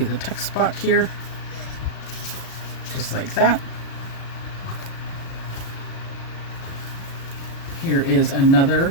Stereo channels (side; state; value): right; late; 37 ms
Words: the text spot here. Just like that. Here is another